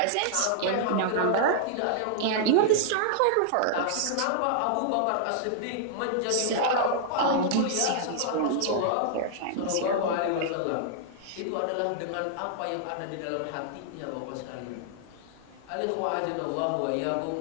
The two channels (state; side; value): different; both; correlation -0.01